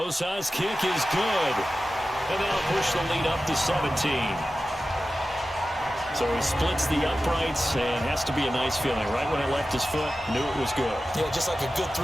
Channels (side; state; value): both; normal; correlation 0.94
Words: kick is good. And that'll push the lead up to 17. So he splits the uprights and has to be a nice feeling. Right when it left his foot, knew it was good. Yeah, just like a good